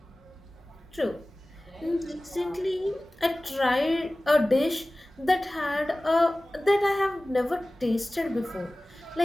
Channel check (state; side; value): normal; both; correlation 0.98